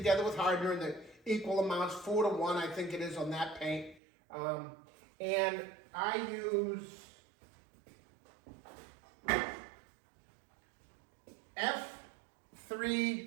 with hardener in the equal amounts, 4 to 1, I think it is on that paint. And I use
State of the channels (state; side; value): drops out; left; at 4.0 s